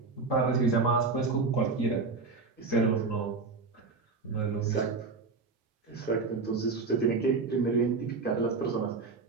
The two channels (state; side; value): quieter; left; 4.3 dB